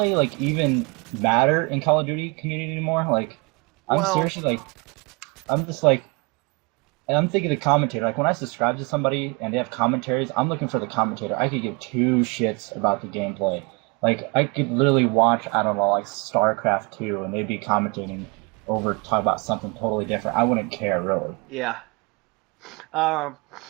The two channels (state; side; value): quieter; left; 29.7 dB